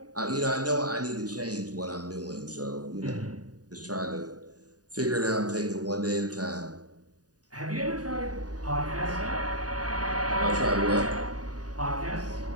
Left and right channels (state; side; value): late; left; 0.68 ms